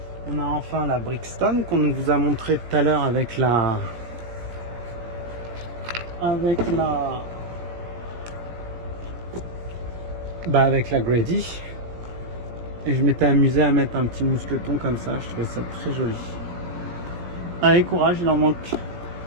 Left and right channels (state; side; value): late; left; 17 ms